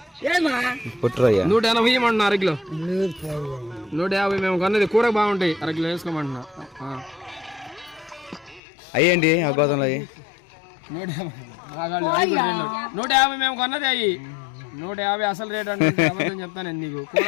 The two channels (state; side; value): drops out; right; at 8.6 s